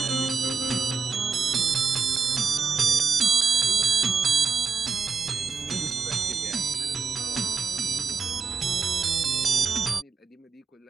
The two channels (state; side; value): quieter; left; 5.2 dB